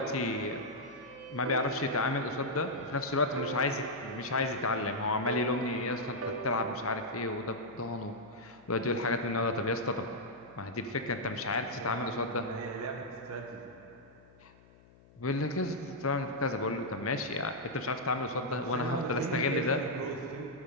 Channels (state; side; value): noise; left; hum, 25 dB below the sound